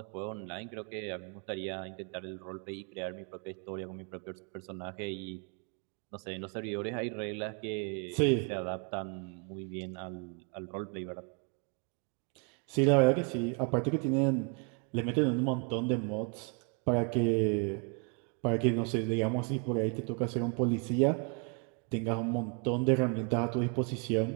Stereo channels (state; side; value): quieter; left; 36.3 dB